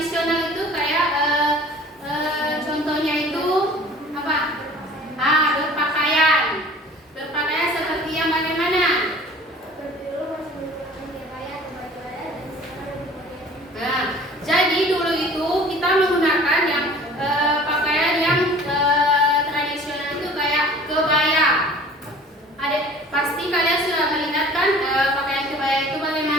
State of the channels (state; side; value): normal; both; correlation 0.47